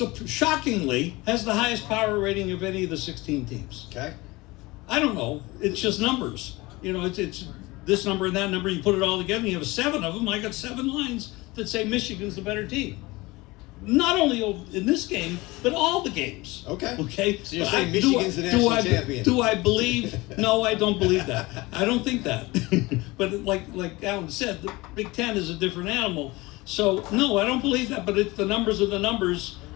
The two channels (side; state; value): right; quieter; 21.9 dB